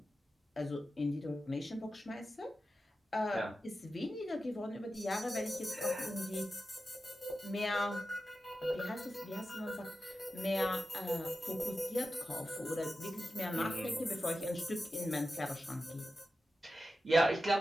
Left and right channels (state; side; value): normal; both; correlation 0.91